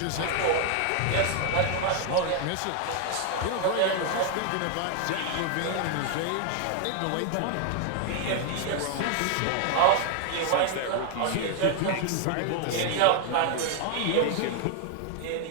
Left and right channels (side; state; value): both; different; correlation 0.00